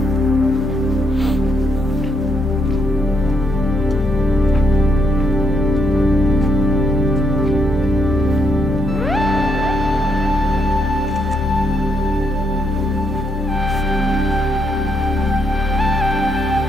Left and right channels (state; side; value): normal; both; correlation 0.76